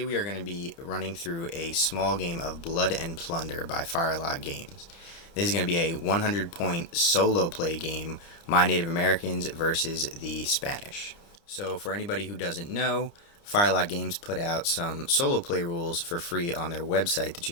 we are going to be running through a small game of Blood and Plunder by Firelock Games. This is going to be a 100-point solo play game, my Native Americans versus the Spanish. So for anybody who doesn't know, Firelock Games put out some solo play rules for free on their website that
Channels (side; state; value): right; late; 30 ms